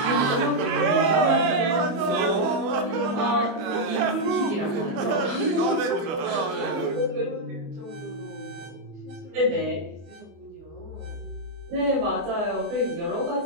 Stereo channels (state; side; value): late; left; 24 ms